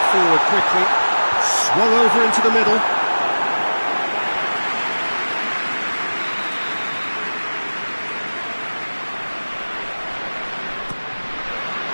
forward quickly. Swung over into the middle.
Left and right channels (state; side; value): inverted; both; correlation -1.00